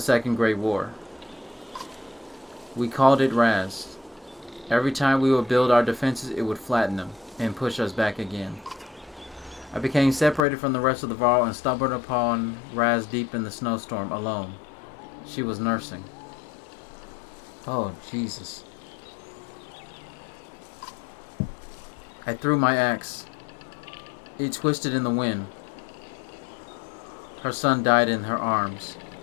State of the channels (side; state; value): right; drops out; at 10.4 s